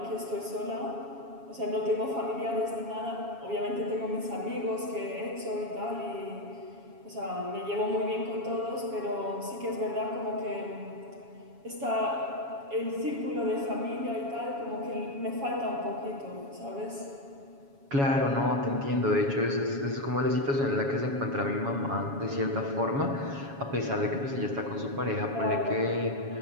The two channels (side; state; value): left; late; 7.2 ms